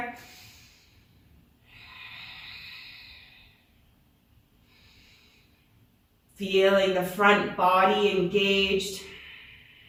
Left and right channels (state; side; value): identical; both; correlation 1.00